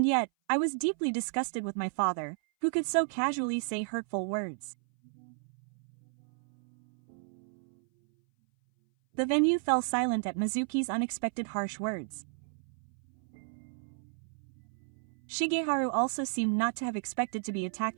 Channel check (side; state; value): left; silent; 56 dB below the other